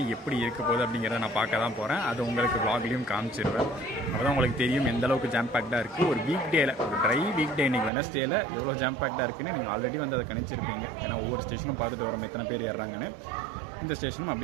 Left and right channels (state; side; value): drops out; left; at 7.9 s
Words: எப்படி இருக்க போகுது அப்படிங்கிறத நான் பார்க்க தான் போகிறேன். அது உங்களுக்கு vlogலையும் காமிச்சிடுவேன். அப்போ தான் உங்களுக்கு தெரியும் எந்த அளவுக்கு ஜாம் பேக்டாக இருக்குது. ஒரு வீக் டேயில், ஒரு ட்ரை வீக் டே இன்றைக்கி வெனஸ்டேயில் எவ்வளோ ஜாம் பேக்டாக இருக்குன்னு நீங்கள் ஆல்ரெடி வந்து அதை கணிச்சிருப்பீங்க. ஏன்னா ஒவ்வொரு ஸ்டேஷனும் பார்த்துட்டு வரோம் எத்தனை பேர் ஏறுறாங்கன்னு. இந்த ஸ்டேஷனும்